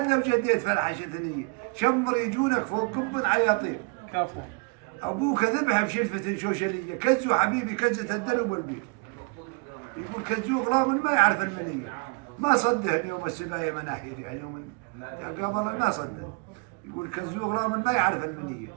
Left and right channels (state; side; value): quieter; left; 30.8 dB